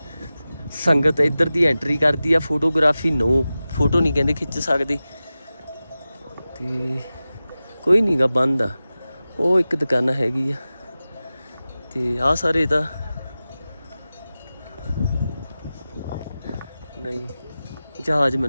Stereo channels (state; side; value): inverted; both; correlation -0.95